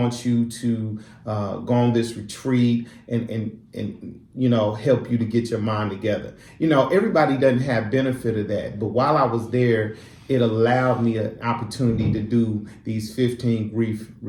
you to go on this retreat and help you to get your mind together. Everybody doesn't have benefit of that. But while I was there, it allowed me an opportunity to do these 15 grief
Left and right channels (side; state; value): both; identical; correlation 1.00